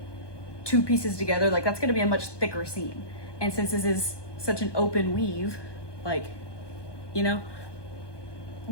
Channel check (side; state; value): right; late; 1.2 ms